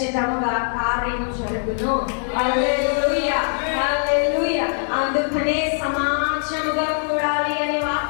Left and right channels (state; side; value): silent; right; 64 dB below the other